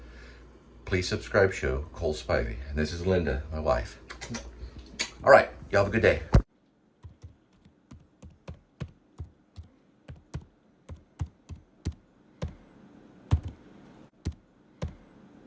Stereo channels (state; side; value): identical; both; correlation 1.00